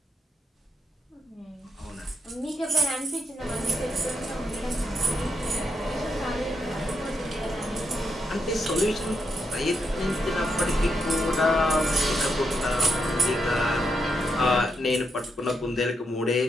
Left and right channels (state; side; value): normal; both; correlation 0.82